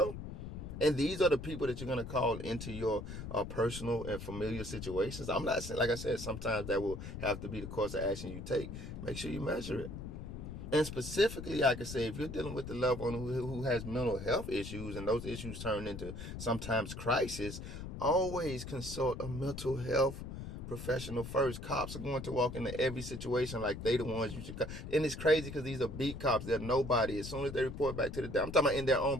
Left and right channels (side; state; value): left; noise; rumble, 8 dB below the sound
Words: And these are the people that you're going to call into your personal and familiar situations. I'm not saying, like I said, sometimes that will have to be the course of action you take. Make sure you measure it. And specifically, I can say, if you're dealing with the loved one who has mental health issues, and those issues turn into sometimes crisis, always consult a mental health professional first. Cops are going to walk into every situation like they the ones you should. And it's crazy because these are beat cops. They're nobody. As soon as they report back to the, I'm talking about in their own